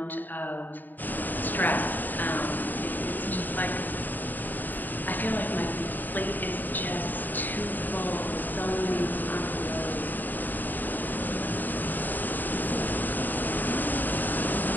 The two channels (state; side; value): late; right; 0.088 ms